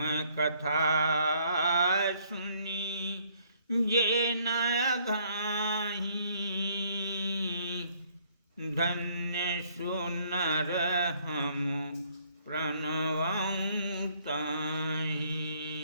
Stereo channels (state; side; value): inverted; both; correlation -0.65